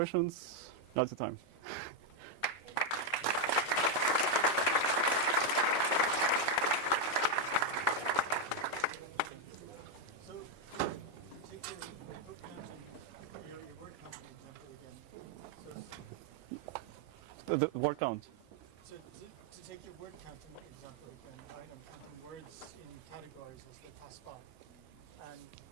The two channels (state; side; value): late; right; 6.4 ms